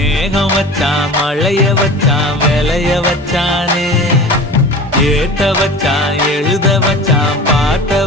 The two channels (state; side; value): normal; both; correlation 0.37